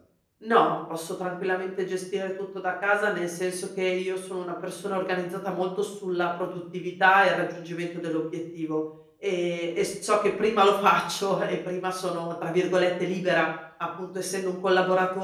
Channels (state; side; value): identical; both; correlation 1.00